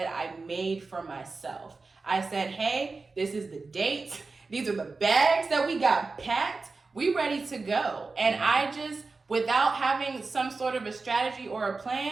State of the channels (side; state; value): left; quieter; 4.0 dB